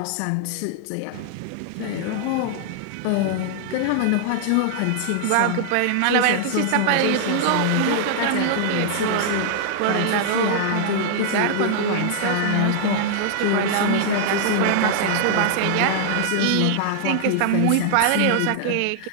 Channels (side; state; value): both; different; correlation -0.01